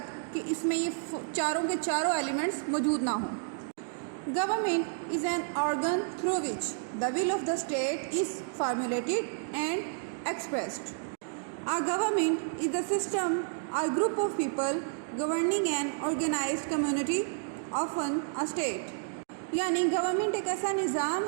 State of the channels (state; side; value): silent; left; digital silence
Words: कि इसमें ये चारों के चारों एलिमेंट्स मौजूद ना हो. Government is an organ through which the will of the state is formulated and expressed. A government is a system or group of people governing an organized community, often a state. यानी गवर्नमेंट एक ऐसा